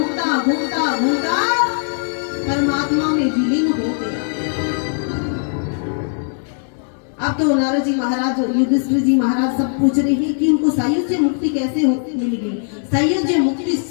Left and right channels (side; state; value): right; silent; digital silence